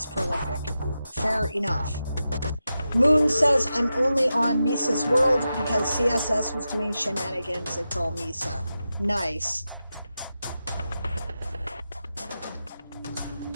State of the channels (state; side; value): inverted; both; correlation -0.91